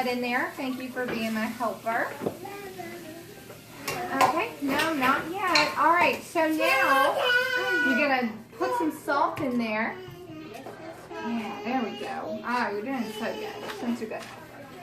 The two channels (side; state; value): both; identical; correlation 1.00